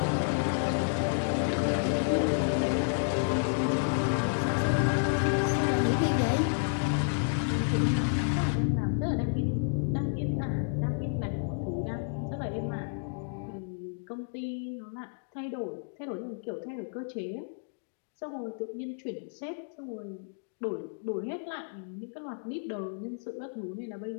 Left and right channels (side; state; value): right; silent; digital silence